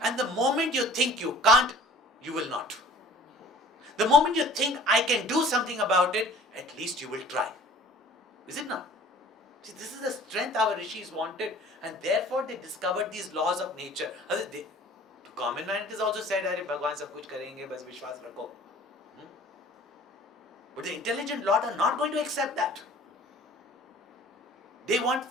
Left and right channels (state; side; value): normal; both; correlation 0.48